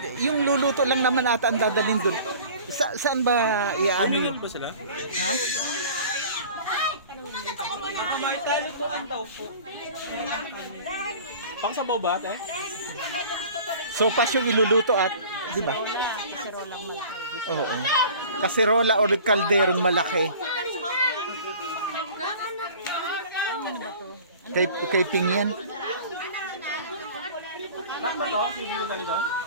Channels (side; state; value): both; inverted; correlation -0.44